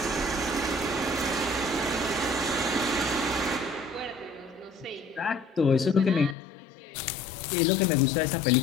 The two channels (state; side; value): drops out; right; at 6.4 s